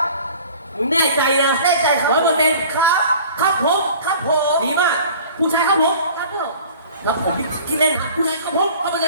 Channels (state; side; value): inverted; both; correlation -0.46